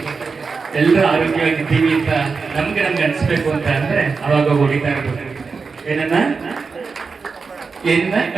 ಎಲ್ಲರೂ ಆರೋಗ್ಯವಾಗಿದ್ದೀವಿ ಅಂತ ನಮ್ಗೆ ಅನ್ಸ್ಬೇಕು ಅಂತ ಅಂದ್ರೆ ಅವಾಗ ಹೊಡಿತಾ ಇರ್ಬೇಕು. ಏನ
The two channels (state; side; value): quieter; left; 4.8 dB